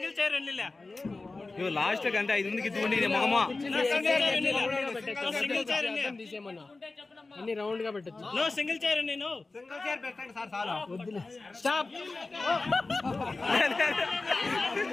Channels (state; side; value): quieter; right; 3.5 dB